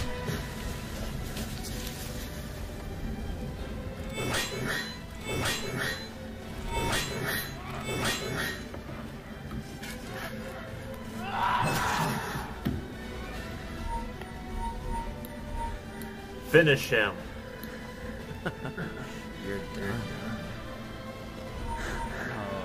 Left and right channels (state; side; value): identical; both; correlation 1.00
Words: Finish him. You're done.